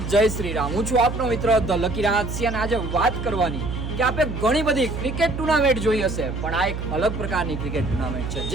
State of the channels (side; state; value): right; noise; hum, 6 dB below the sound